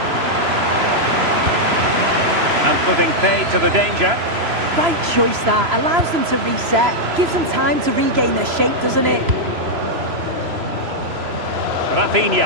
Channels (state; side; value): late; left; 3.0 ms